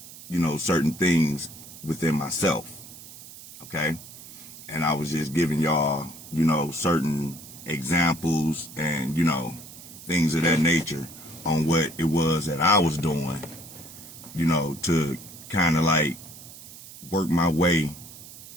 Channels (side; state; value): right; noise; hiss, 16 dB below the sound